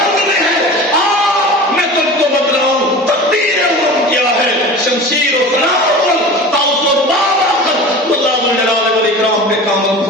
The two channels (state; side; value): normal; both; correlation 0.35